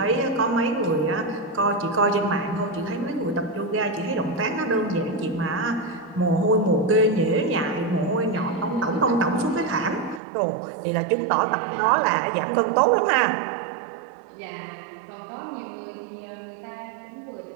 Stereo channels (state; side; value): drops out; left; at 10.2 s